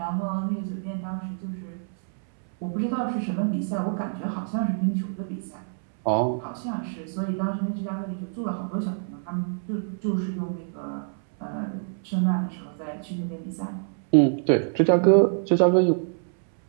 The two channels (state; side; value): silent; left; 61 dB below the other